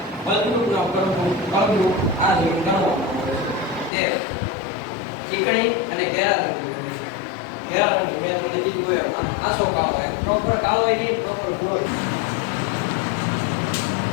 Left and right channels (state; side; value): drops out; right; at 3.9 s